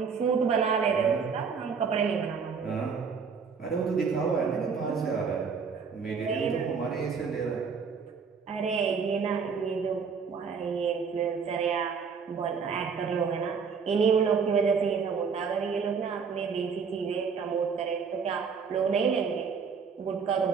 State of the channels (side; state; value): left; quieter; 5.9 dB